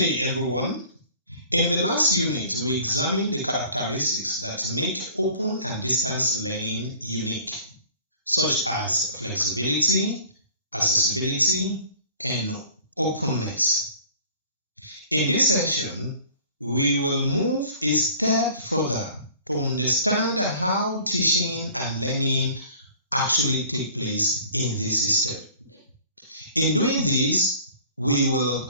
everyone. In the last unit, we examined the characteristics that make open and distance learning unique, such as flexibility, accessibility, and openness. In this section, we will move a step further to understand how teaching and learning actually take place in this system. In doing this, we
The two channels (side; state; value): both; inverted; correlation -0.48